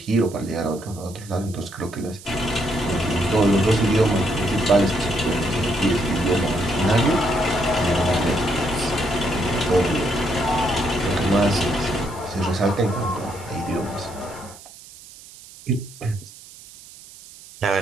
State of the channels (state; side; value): noise; right; hiss, 19 dB below the sound